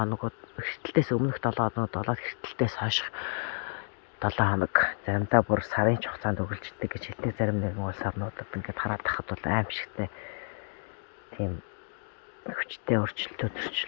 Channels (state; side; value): silent; right; digital silence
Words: хэртэлтээс өмнөх 7 хоногуд болоод хэртэлтээс хойш 7 хоног заримдаа бүр сарын хугацаанд үргэлжлэдэг гэж хэлдэг. Зарим нэгэн улс орнуудад ингээд хараад тахад бол аимшигтай тийм хүчтэй